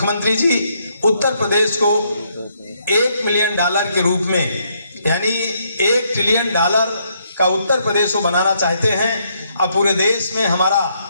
जी उत्तर प्रदेश को $1 मिलियन के रूप में, यानी $1 ट्रिलियन का उत्तर प्रदेश को बनाना चाहते हैं, और पूरे देश में हमारा,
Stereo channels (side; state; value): both; inverted; correlation -0.74